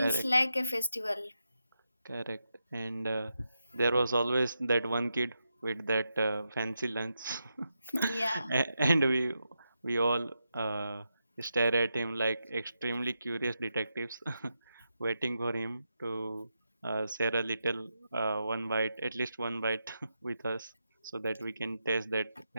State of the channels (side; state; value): both; inverted; correlation -0.86